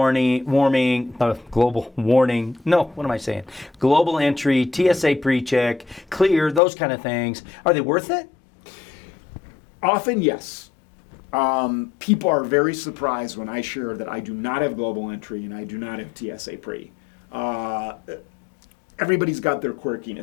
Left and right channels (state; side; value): drops out; right; at 6.6 s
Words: global entry, TSA PreCheck, clear, those kind of things, are they worth it? Often, yes. People are very surprised when I share that I do not have global entry and I do not have TSA Pre. Everybody's got their